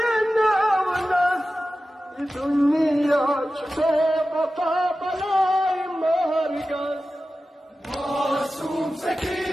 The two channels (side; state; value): both; normal; correlation 0.94